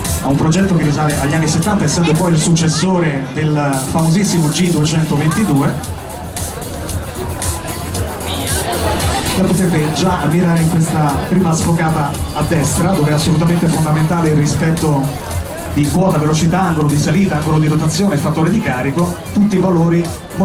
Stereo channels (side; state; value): both; identical; correlation 1.00